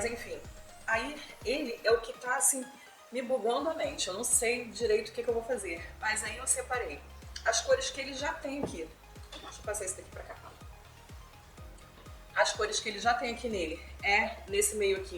enfim, aí ele é o que tá assim me bugando a mente. Eu não sei direito o que eu vou fazer. Mas aí eu separei as cores que ele já tem aqui. Deixa eu passar esse daqui pra cá. As cores que ele já tem aqui nele é nesse meio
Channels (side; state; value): both; identical; correlation 1.00